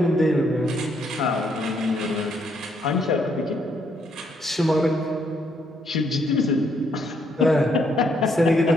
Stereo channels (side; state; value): both; normal; correlation 0.72